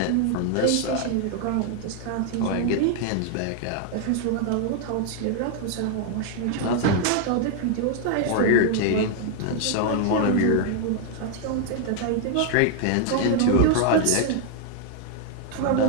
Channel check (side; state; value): both; different; correlation 0.00